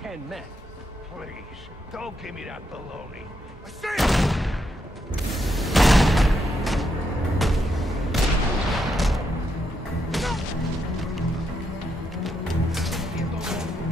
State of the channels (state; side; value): normal; both; correlation 0.80